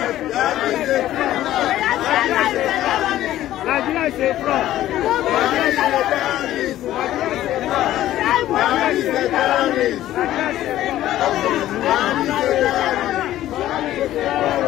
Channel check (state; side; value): quieter; right; 13.6 dB